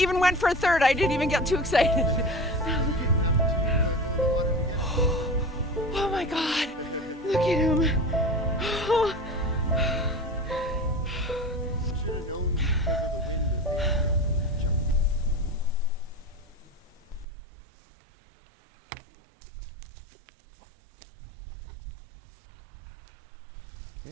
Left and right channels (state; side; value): drops out; left; at 17.2 s